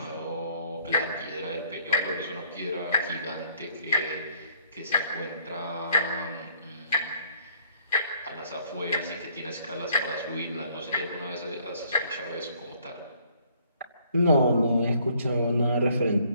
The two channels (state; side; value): inverted; both; correlation -0.62